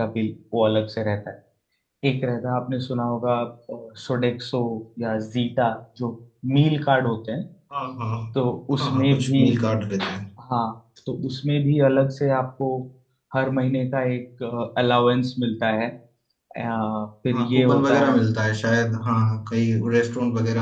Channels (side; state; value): both; identical; correlation 1.00